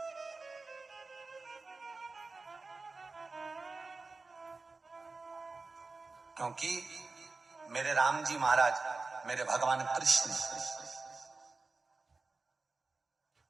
क्योंकि मेरे राम जी महाराज, मेरे भगवान कृष्ण,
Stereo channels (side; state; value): left; quieter; 3.8 dB